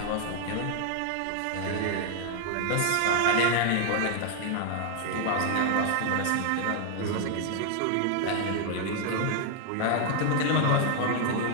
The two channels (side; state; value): both; different; correlation 0.00